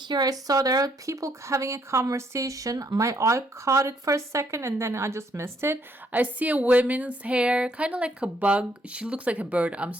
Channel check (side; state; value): both; normal; correlation 0.70